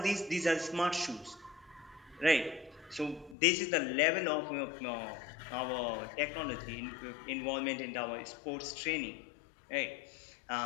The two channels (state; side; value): drops out; right; at 3.4 s